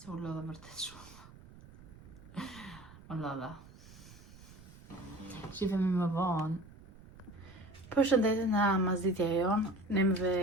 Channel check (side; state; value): right; noise; rumble, 20 dB below the sound